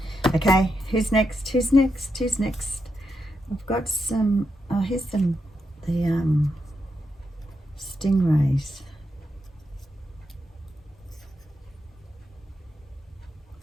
Okay, who's next? Who's next? Who's next? I've got some, here's the stingrays.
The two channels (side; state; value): both; normal; correlation 0.84